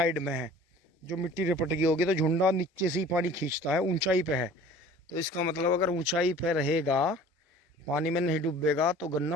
में है, जो मिट्टी रिपट गई होगी तो झुंडा नीचे से ही पानी खींचता है, ऊंचाई पे है। तो इसका मतलब अगर ऊंचाई पे रहेगा, पानी में नहीं डूबेगा, तो गन्ना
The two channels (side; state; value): both; normal; correlation 0.46